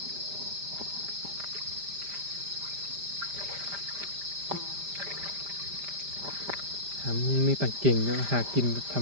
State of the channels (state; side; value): late; left; 5.0 ms